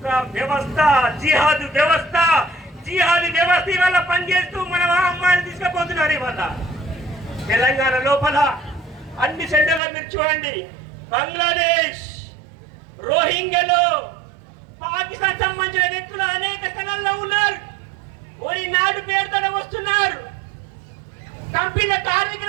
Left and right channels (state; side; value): drops out; left; at 9.8 s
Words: వ్యవస్థ, జిహాదు వ్యవస్థ ఇవాళ పనిచేస్తూ మన అమ్మాయిని తీసుకుపోతున్నారు. ఇవాళ తెలంగాణ లోపల అన్ని సెంటర్లో మీరు చూడండి, బంగ్లాదేశ్, రోహింగ్యాలు, పాకిస్తాన్ సంబంధించిన వ్యక్తులు అనేక స్థలాల్లో ఉన్నారు. ఓరి నాడు పేరుతో వస్తున్నారు, కంపెనీల